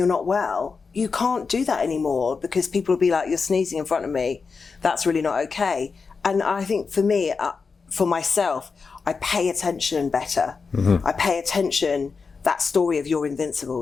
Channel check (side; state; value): right; quieter; 5.0 dB